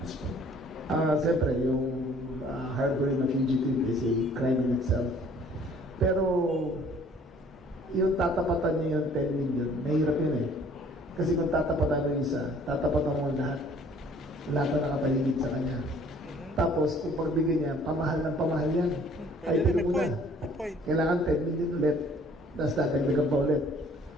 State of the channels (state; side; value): normal; both; correlation 0.56